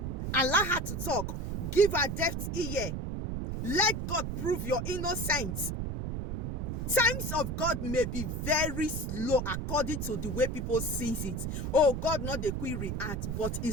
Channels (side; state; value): right; noise; rumble, 3 dB below the sound